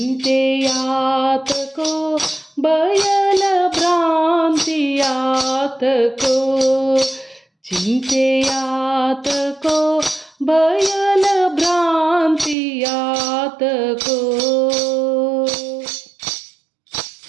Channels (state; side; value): drops out; left; at 12.6 s